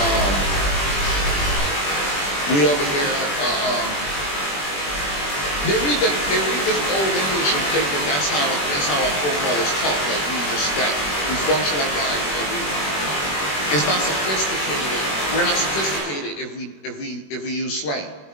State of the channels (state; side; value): late; right; 21 ms